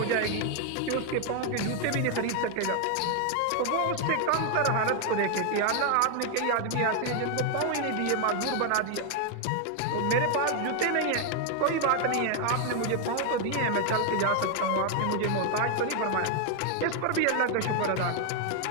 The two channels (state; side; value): different; both; correlation 0.00